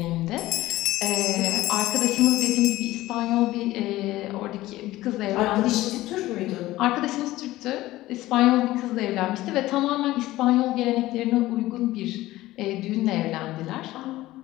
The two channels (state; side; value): quieter; right; 16.9 dB